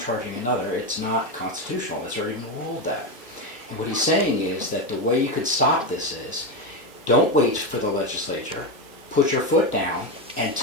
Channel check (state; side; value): normal; both; correlation 0.12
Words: another. It's not constitutional. It's already been ruled that. And what he's saying is that the way you could stop this is, don't wait for the legislature, put your foot down and